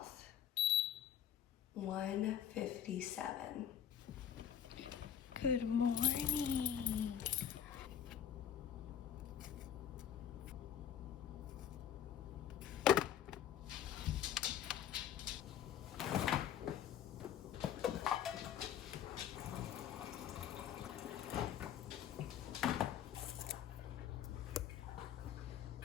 1:57. Good morning.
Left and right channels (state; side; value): quieter; right; 9.6 dB